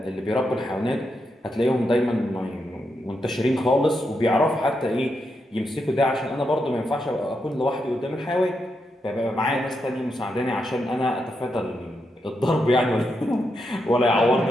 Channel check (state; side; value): normal; both; correlation 0.83